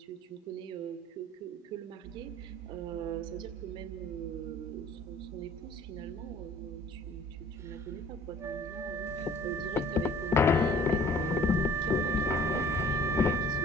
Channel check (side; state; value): both; normal; correlation 0.51